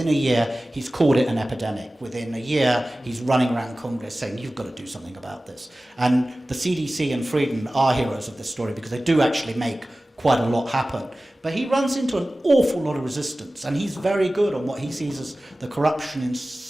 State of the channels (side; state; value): both; normal; correlation 0.97